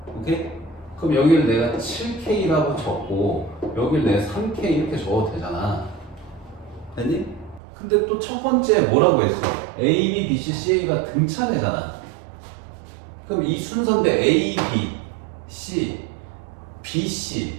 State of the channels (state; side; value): drops out; left; at 7.6 s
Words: 오케이? 그럼 여기를 내가 7K라고 적고 여기를 내가 3K 이렇게 적어도 되잖아. 됐니? 근데 또 첫 번째 뭐라고 했어? A, B, B, C, CA가 등차례잖아. 그럼 이 순서인데 A, B, C, B,